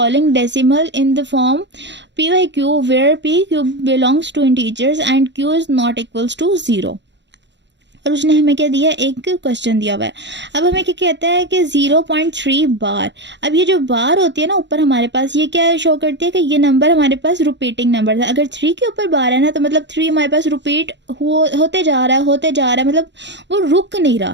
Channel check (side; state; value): left; late; 0.52 ms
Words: decimal in the form p by q where p q belongs to integers and q is not equals to zero. और उसने हमें क्या दिया, एक क्वेश्चन दिया हुआ है। अब हमें क्या कहता है कि 0.3 बार। अब ये जो बार होती है ना ऊपर हमारे पास, ये क्या शो करती है कि ये नंबर हमारे पास रिपीटिंग नंबर है। अगर 3 के ऊपर बार है ना तो मतलब 3 हमारे पास रिपीट होते जा रहा है, होते जा रहा है, मतलब वो रुक नहीं